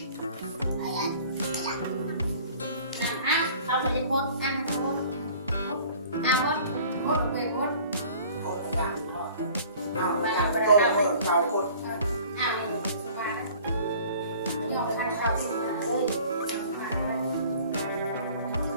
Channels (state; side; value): inverted; both; correlation -0.49